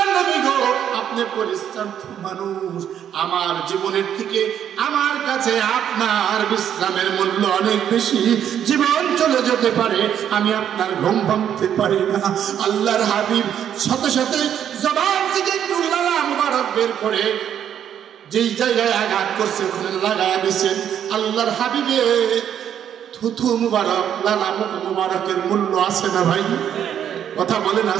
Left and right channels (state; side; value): quieter; left; 9.5 dB